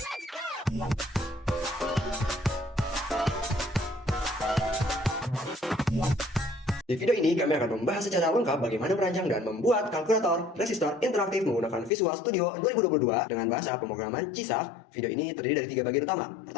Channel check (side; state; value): right; drops out; at 11.9 s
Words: Di video ini kami akan membahas secara lengkap bagaimana merancang dan membuat kalkulator resistor interaktif menggunakan Visual Studio 2022 dengan bahasa pemrograman CISA. Video ini terdiri dari 3 bagian utama.